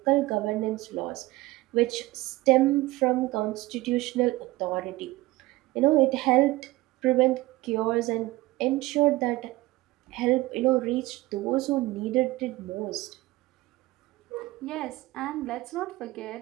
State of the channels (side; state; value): left; quieter; 19.2 dB